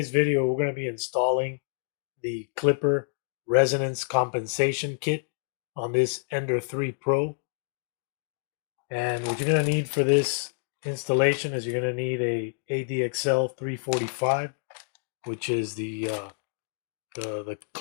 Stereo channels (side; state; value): right; silent; digital silence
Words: video, we're going to be installing the Klipper Resonance Compensation Kit on this Ender 3 Pro. And what you're going to need for this installation is you're going to need a ADXL345, which is the Klipper